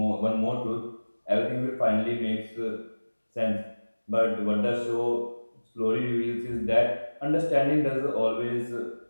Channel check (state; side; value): inverted; both; correlation -1.00